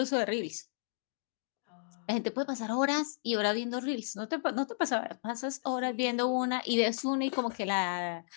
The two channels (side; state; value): right; silent; digital silence